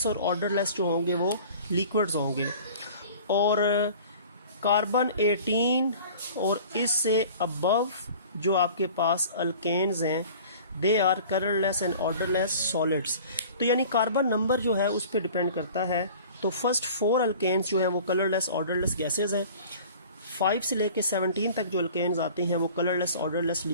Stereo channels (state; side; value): inverted; both; correlation -0.44